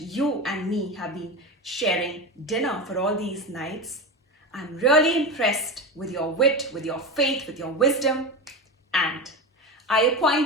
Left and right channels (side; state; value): both; normal; correlation 0.22